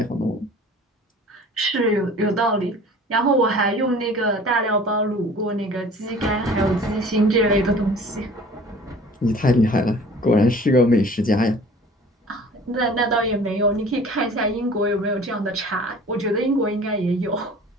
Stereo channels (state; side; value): normal; both; correlation 0.46